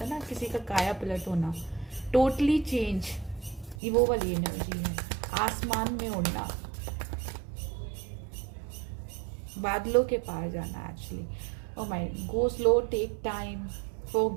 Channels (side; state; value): left; drops out; at 3.8 s